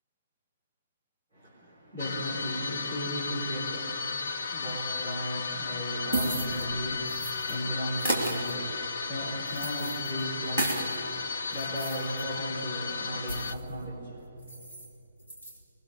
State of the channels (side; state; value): both; inverted; correlation -0.71